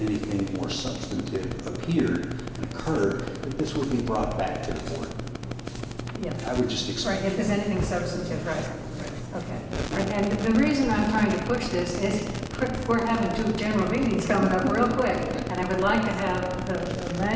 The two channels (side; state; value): both; identical; correlation 1.00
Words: anything more substantive appeared and occurred, that this would be brought back to the board. Yeah. I would just expect. Right, if there's anything substantive, right. Okay. And the reason I'm trying to push this is we're having 2 general meetings coming up real quick, and I would like to have the